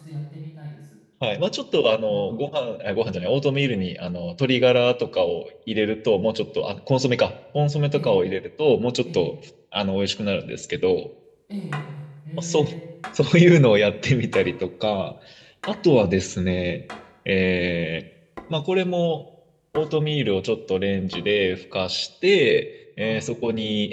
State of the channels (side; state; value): both; identical; correlation 1.00